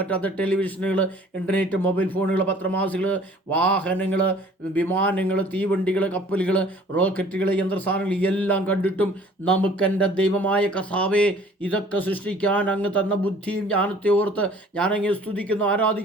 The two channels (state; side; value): normal; both; correlation 0.52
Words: ടെലിവിഷനുകൾ, ഇൻ്റർനെറ്റ്, മൊബൈൽ ഫോണുകൾ, പത്രമാസികൾ, വാഹനങ്ങൾ, വിമാനങ്ങൾ, തീവണ്ടികൾ, കപ്പലുകൾ, റോക്കറ്റുകൾ, യന്ത്രസാധനങ്ങൾ എല്ലാം കണ്ടിട്ടും നമുക്കെൻ്റെ ദൈവമായ കർത്താവേ ഇതൊക്കെ സൃഷ്ടിക്കാൻ അങ്ങ് തന്ന ബുദ്ധിയും ജ്ഞാനത്തെ ഓർത്ത് ഞാനങ്ങ് സ്തുതിക്കുന്നു,